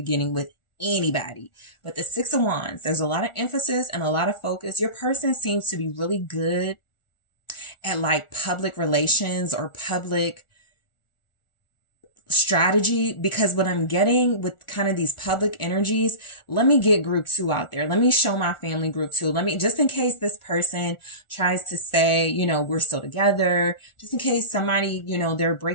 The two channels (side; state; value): right; late; 1.4 ms